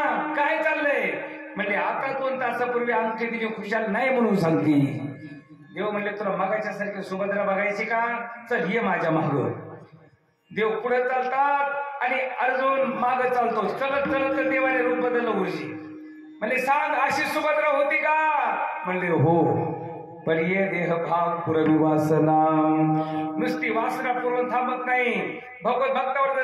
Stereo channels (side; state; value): both; identical; correlation 1.00